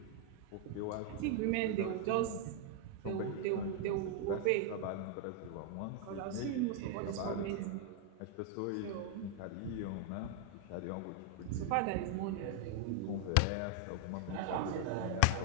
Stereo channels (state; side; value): different; both; correlation 0.00